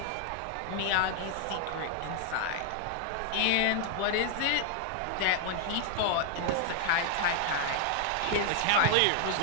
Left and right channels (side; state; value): both; different; correlation 0.00